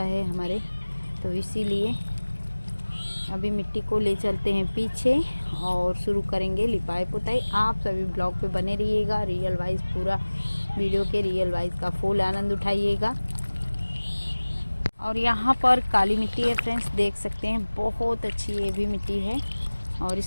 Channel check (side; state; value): both; inverted; correlation -1.00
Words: है हमारे, तो इसीलिए अभी मिट्टी को ले चलते हैं पीछे और शुरू करेंगे लिपाई पुताई। आप सभी ब्लॉग पे बने रहिएगा, रियल वाइज पूरा वीडियो के रियल वाइज का फुल आनंद उठाइएगा। और यहाँ पर काली मिट्टी है फ्रेंड्स, देख सकते हैं बहुत अच्छी ये भी मिट्टी है और